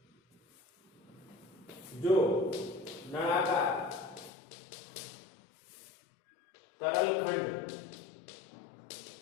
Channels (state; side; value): drops out; right; at 4.3 s